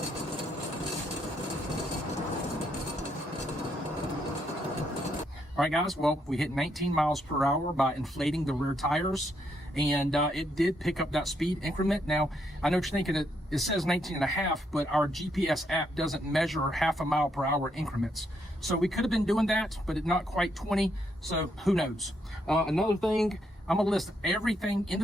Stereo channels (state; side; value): normal; both; correlation 0.76